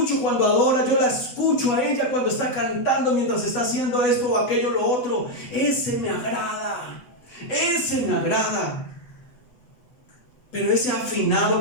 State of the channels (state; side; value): late; right; 8.0 ms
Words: cuando adora, yo la escucho a ella cuando está cantando mientras está haciendo esto o aquello, lo otro. Ese me agrada, ese me agrada. Pero ese afinado